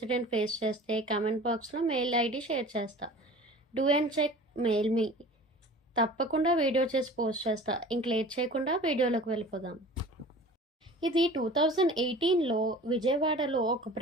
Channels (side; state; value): both; normal; correlation 0.42